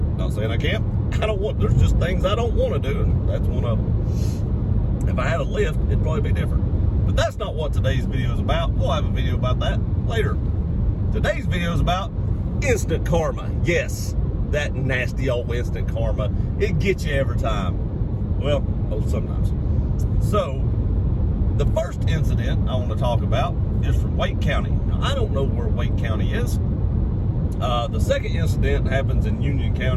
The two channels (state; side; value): identical; both; correlation 1.00